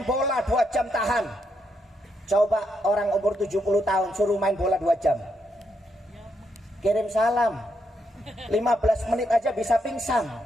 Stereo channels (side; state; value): both; normal; correlation 0.79